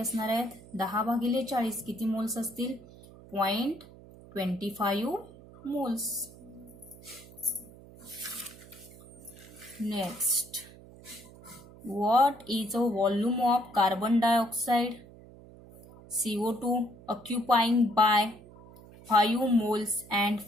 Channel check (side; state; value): right; noise; hum, 20 dB below the sound